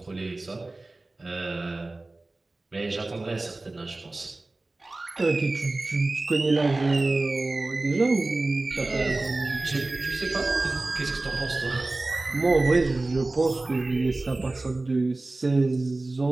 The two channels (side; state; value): left; quieter; 3.0 dB